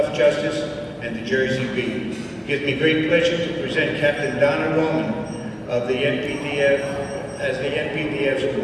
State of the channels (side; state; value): both; identical; correlation 1.00